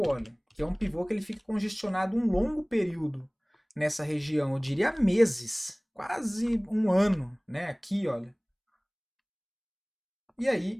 olha. Que é um pivô que ele fica congestionado um longo período nessa região, eu diria meses, quase um ano, né? Aqui, olha. E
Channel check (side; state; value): both; identical; correlation 1.00